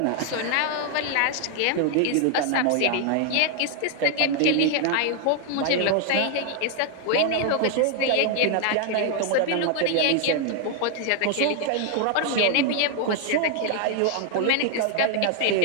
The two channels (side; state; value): both; different; correlation 0.00